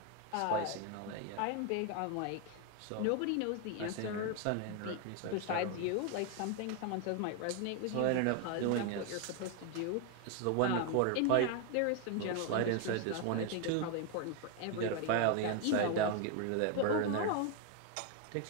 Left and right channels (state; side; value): different; both; correlation 0.01